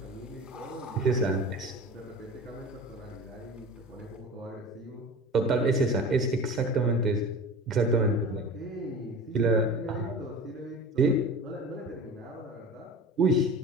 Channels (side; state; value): both; normal; correlation 0.35